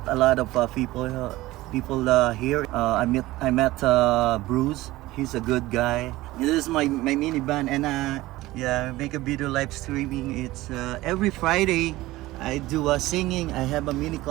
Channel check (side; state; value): left; quieter; 18.0 dB